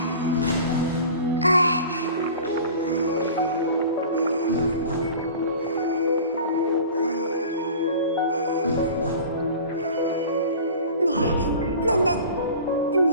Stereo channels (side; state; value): both; inverted; correlation -0.40